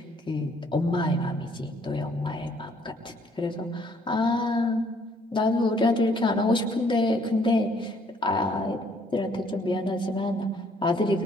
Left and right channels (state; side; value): normal; both; correlation 0.64